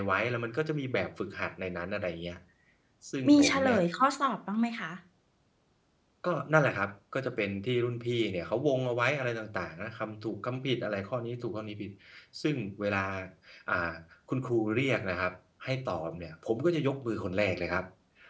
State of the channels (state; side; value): identical; both; correlation 1.00